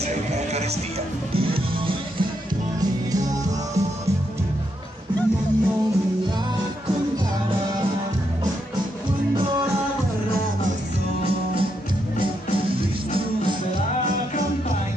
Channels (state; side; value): normal; both; correlation 0.80